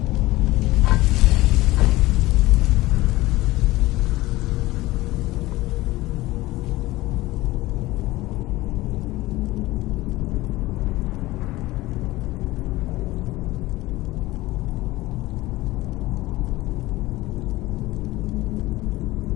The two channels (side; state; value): right; quieter; 18.5 dB